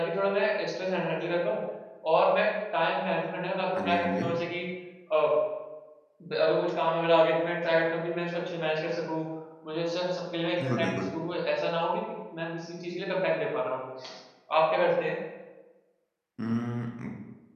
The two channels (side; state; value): both; identical; correlation 1.00